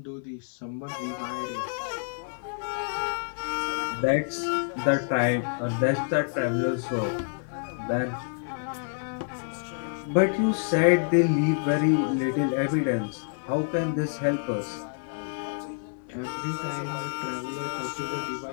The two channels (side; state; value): right; silent; 59 dB below the other